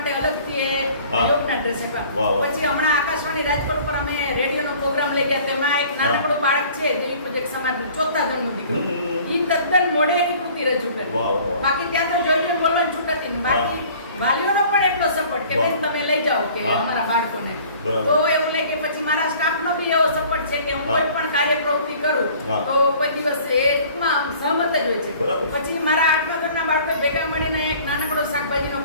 અલગથી એ યોગના ડ્રેસ આપ્યા. પછી હમણાં આકાશવાણી રાજકોટ પર અમે રેડિયોનો પ્રોગ્રામ લઈ ગયા. તેમાં એક નાનકડું બાળક છે દેવી પૂજક સમાજનું 4થા ધોરણનું દીકરો. ઈ તદ્દન મોઢે એની કૃતિ રજૂ કરી. બાકી ત્યાં તો જોઈને બોલવાની છૂટ હતી. બાકી વાલીઓનો પણ એટલો સપોર્ટ કે બેન તમે લઈ જાઓ કે અમારા બાળકોને. તો એવું લે કે પછી મારા સ્ટાફનો બી એવો સપોર્ટ છે કે હું કોઈ પણ કાર્ય પ્રવૃત્તિ કરું તો કોઈ દિવસ એ ટૂંકમાં સહમત જ હોય છે. પછી મારા 8મા ધોરણના બાળકો ભેગા મળીને એક નાનકડો શાકભાજીનો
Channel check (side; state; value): both; inverted; correlation -0.50